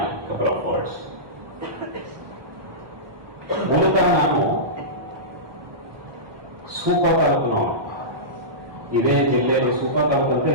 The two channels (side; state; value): left; late; 1.2 ms